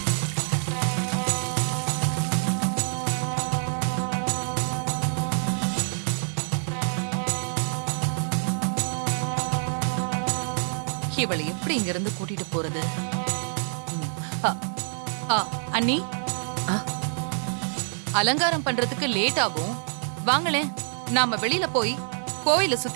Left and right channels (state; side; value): silent; left; 61 dB below the other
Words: இவளை எப்படி இங்க இருந்து கூட்டிட்டு போறது? அண்ணி, அலங்காரம் பண்றதுக்கு லேட் ஆகும். வாங்களேன், நாம வெளியில போய் கோயில